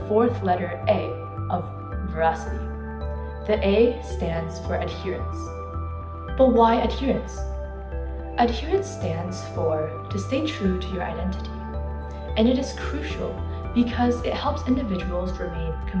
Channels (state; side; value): identical; both; correlation 1.00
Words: letter A of veracity. The A stands for adherence. But why adherence? Adherence stands for to stay true to your identity, and it is crucial because it helps individuals remain